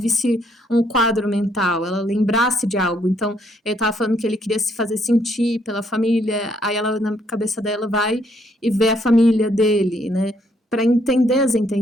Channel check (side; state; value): both; normal; correlation 0.70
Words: um quadro mental, ela lembrasse de algo. Então, ele estava falando que ele queria se fazer sentir pela família, aí ela, na cabeça dela, vai e vê a família dele, né? Para entender as